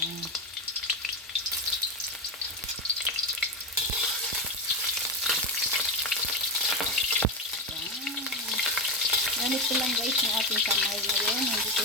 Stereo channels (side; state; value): both; normal; correlation 0.14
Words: Yan. Gamit ko lang guys yung ating kamay ngayon. Hindi